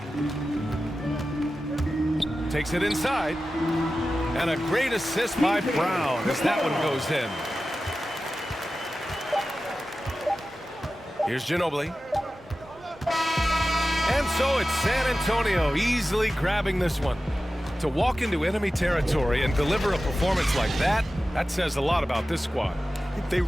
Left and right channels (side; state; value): both; normal; correlation 0.94